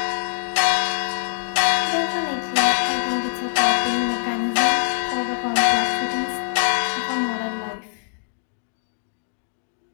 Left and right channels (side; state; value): right; silent; digital silence